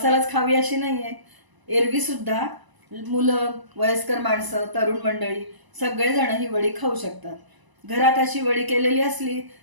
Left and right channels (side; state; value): left; late; 1.0 ms